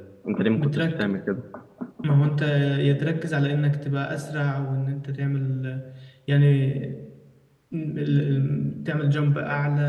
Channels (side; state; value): both; identical; correlation 1.00